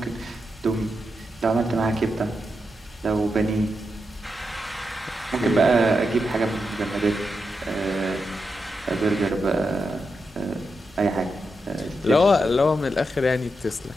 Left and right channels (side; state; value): both; normal; correlation 0.86